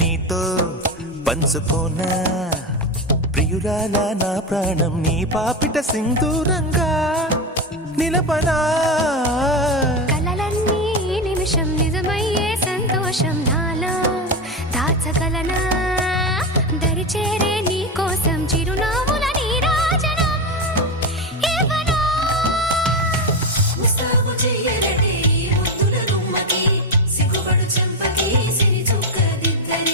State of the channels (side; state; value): both; normal; correlation 0.14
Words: పంచుకోనా ప్రియురాల నా ప్రాణం నీ పాపిట సింధూరంగా నిలపనా కలలన్నీ నిమిషం నిజమయ్యే సంతోషం నాలో దాచగలనా దరిచేరే నీ కోసం చిరునవ్వుల నీరాజనం ఇవ్వనా ముస్తాబు చెయ్యరటే ఈ ముద్దుల గుమ్మకి సిగ్గుపడు చెంపకి సిరి